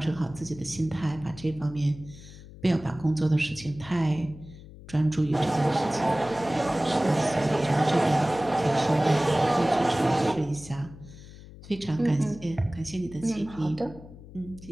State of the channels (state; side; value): noise; left; hum, 17 dB below the sound